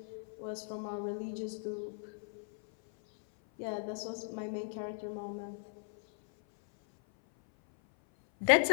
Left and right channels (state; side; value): silent; right; 53 dB below the other